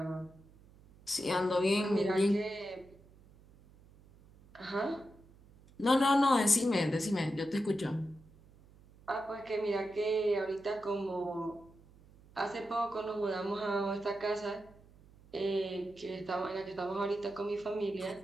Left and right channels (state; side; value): noise; right; hum, 25 dB below the sound